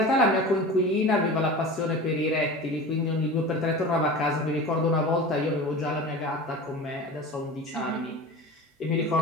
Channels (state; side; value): normal; both; correlation 0.33